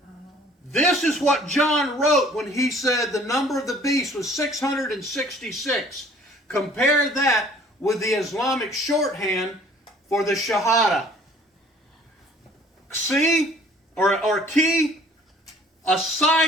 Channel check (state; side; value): normal; both; correlation 0.54